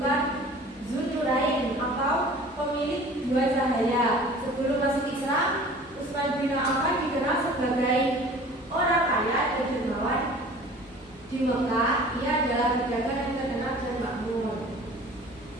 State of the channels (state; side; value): normal; both; correlation 0.45